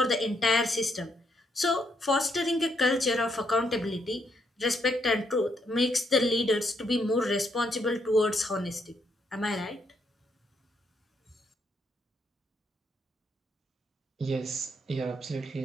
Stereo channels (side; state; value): both; normal; correlation 0.75